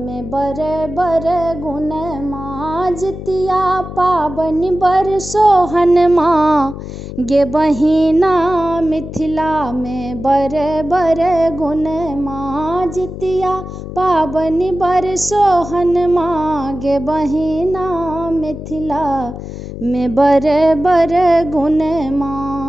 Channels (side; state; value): left; noise; hum, 10 dB below the sound